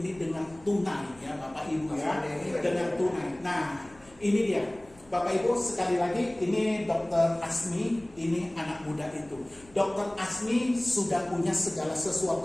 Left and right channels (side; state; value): left; noise; rumble, 26 dB below the sound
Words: dengan tunai, ya, Bapak Ibu, ya, dengan tunai. Nah, ini dia. Bapak Ibu, sekali lagi, ini Dr. Asmi, ini anak muda itu. Dr. Asmi sudah punya segala